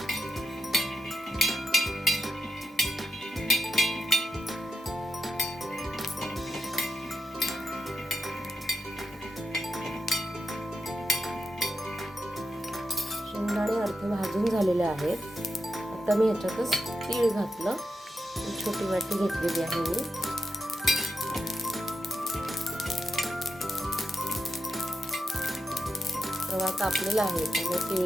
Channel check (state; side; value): normal; both; correlation 0.86